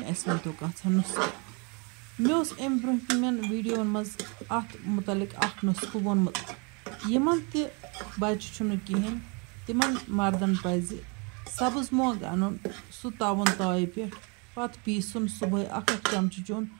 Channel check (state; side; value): quieter; left; 32.5 dB